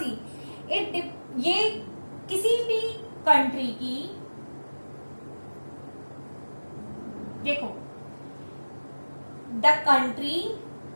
ये किसी भी कंट्री की, देखो, the country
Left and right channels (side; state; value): both; inverted; correlation -1.00